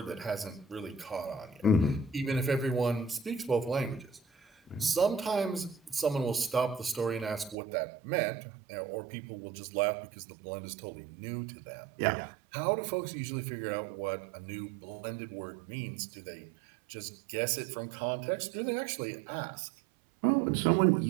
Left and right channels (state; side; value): drops out; left; at 7.6 s